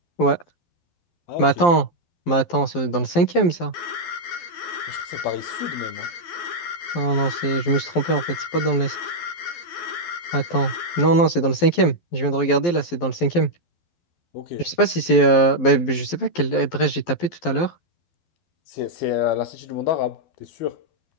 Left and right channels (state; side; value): late; right; 12 ms